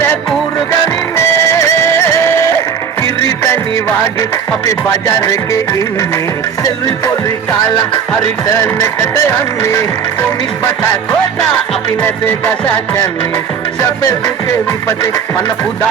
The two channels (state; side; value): quieter; left; 7.3 dB